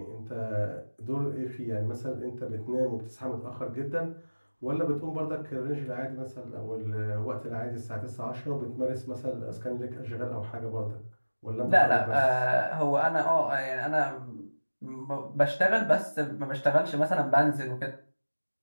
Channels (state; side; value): inverted; both; correlation -1.00